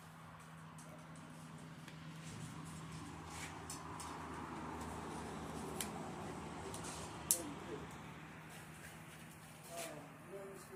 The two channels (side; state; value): both; identical; correlation 1.00